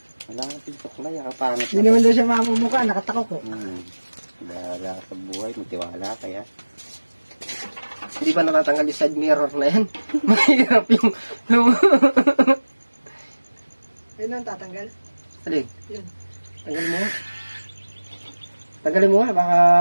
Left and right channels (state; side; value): inverted; both; correlation -1.00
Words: Wala ka tintuklay, kapangit. Hindi naman daw siya mamumuka, nakatakok ko. Wala ka sa buhay, may tiwala kaya. Hindi ba natatanggal yung side mirror na yan? Mahirap yung... Ayun ang tatanggal. Alin? Yun. Tanggalin mo. Tanggalin mo nga, baka...